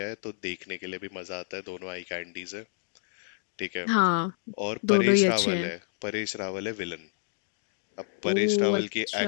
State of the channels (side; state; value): right; silent; digital silence